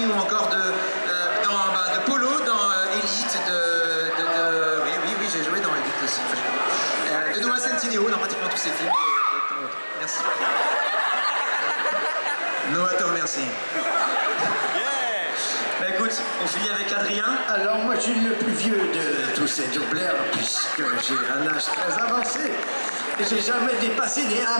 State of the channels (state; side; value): inverted; both; correlation -1.00